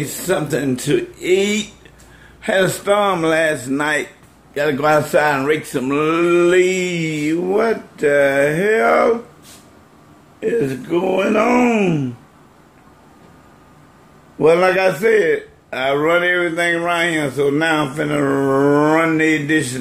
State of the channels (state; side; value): identical; both; correlation 1.00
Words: something to eat. Had a storm last night. Gotta go outside and rake some leaves. What the hell is going on? Well, like I said, I run everything around here, so now I'm finna run these